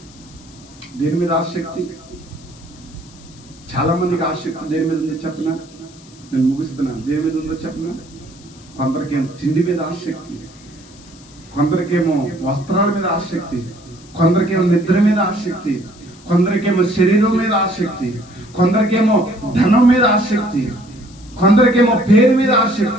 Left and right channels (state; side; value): noise; left; hiss, 24 dB below the sound